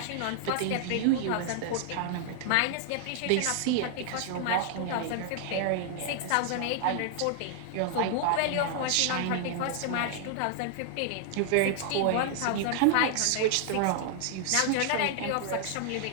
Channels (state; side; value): different; both; correlation 0.00